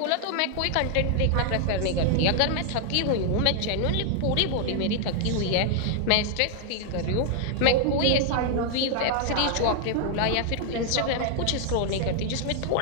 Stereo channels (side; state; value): both; different; correlation 0.00